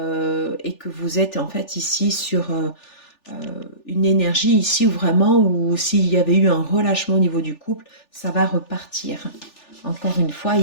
Et que vous êtes en fait ici sur une énergie ici où vraiment, où s'il y avait eu un relâchement au niveau du couple, ça va repartir. Encore une fois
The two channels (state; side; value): late; right; 3.4 ms